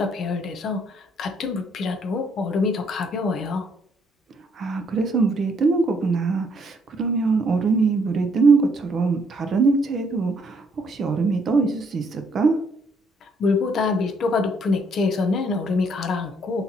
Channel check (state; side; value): normal; both; correlation 0.69